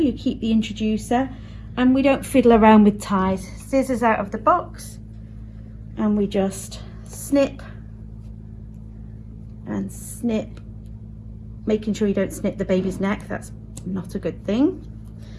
keep the introducer, and we don't fiddle around with ties. Scissors out of the box, and we just snip and snip, making sure you don't snip the baby's neck. That's not a good thing.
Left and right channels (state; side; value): identical; both; correlation 1.00